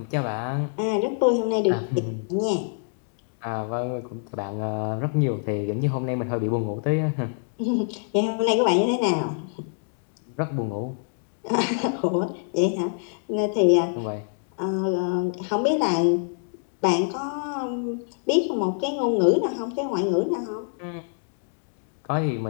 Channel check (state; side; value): silent; right; digital silence